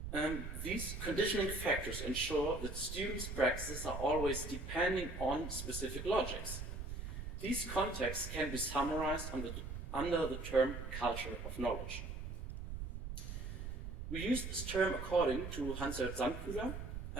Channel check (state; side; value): noise; right; rumble, 6 dB below the sound